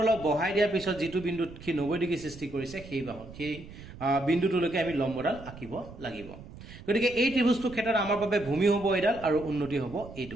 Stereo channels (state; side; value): noise; right; rumble, 16 dB below the sound